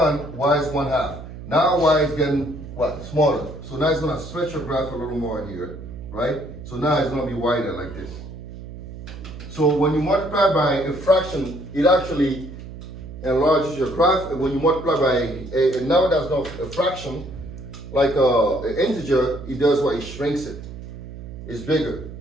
y is 1/2. Now y is getting what? Smaller. So now it's gonna stretch your graph a little more here, right? So now it's gonna be wider like this. So when you multiply by a fraction, it actually enlarges your graph. And when you multiply by and now that's not a fraction, like an integer, it does what? It shrinks it. is bigger.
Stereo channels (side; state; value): right; noise; hum, 12 dB below the sound